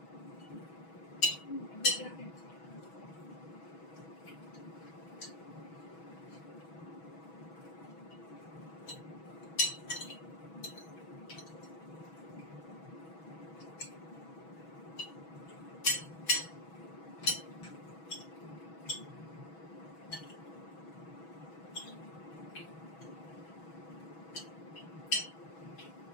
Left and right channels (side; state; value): right; late; 6.2 ms